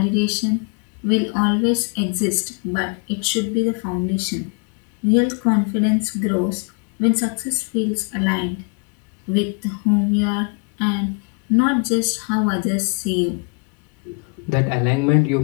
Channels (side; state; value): right; quieter; 35.9 dB